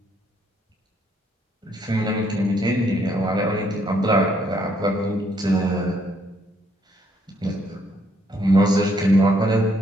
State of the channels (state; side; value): normal; both; correlation 0.70